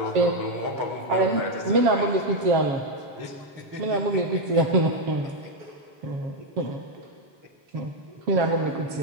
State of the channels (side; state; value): left; late; 7.4 ms